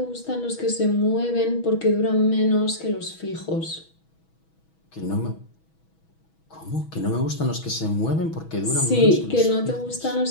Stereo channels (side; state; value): right; late; 6.2 ms